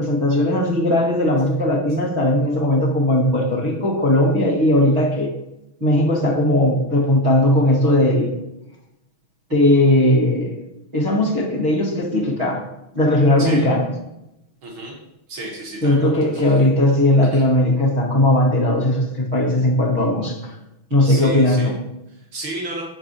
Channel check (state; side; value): late; left; 6.2 ms